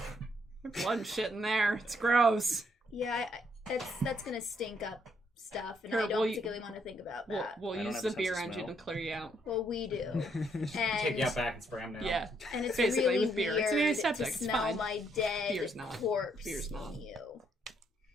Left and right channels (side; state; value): both; normal; correlation 0.73